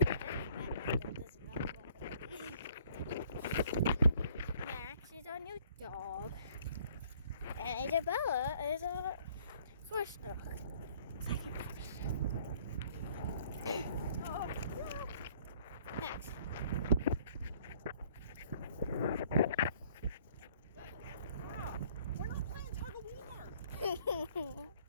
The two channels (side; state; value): both; inverted; correlation -0.58